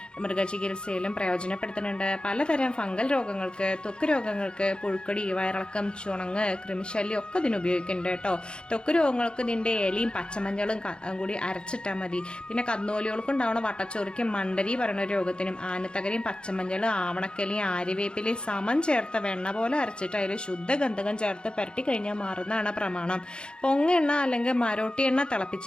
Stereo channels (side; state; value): right; late; 0.051 ms